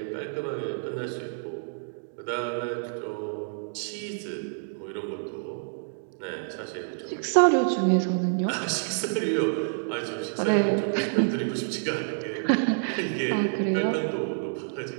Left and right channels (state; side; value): silent; left; digital silence